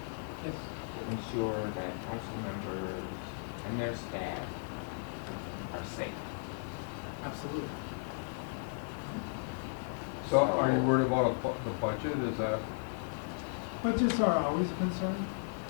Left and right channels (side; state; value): right; silent; 54 dB below the other